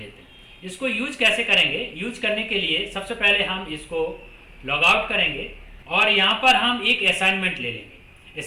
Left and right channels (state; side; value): identical; both; correlation 1.00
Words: हैं। इसको यूज कैसे करेंगे, यूज करने के लिए सबसे पहले हम इसको लॉग आउट करेंगे और यहाँ पर हम एक असाइनमेंट ले लेंगे।